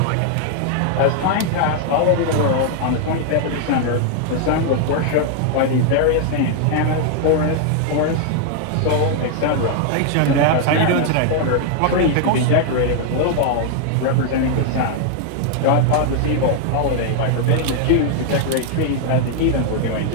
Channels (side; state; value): both; different; correlation 0.00